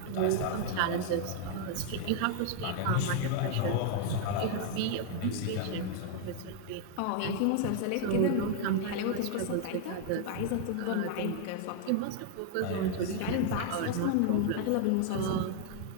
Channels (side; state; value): both; different; correlation 0.00